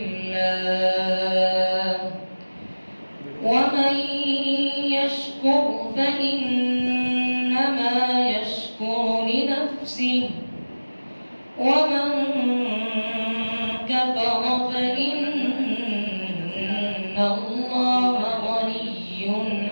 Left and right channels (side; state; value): both; inverted; correlation -1.00